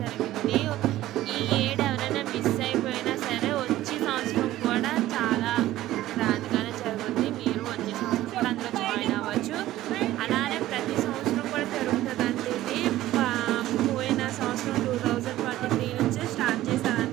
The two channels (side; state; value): left; quieter; 14.9 dB